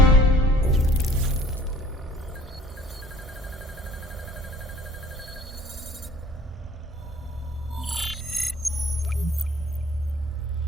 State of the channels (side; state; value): both; normal; correlation 0.54